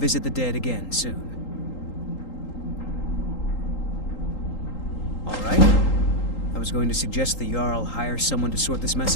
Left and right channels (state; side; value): late; right; 3.8 ms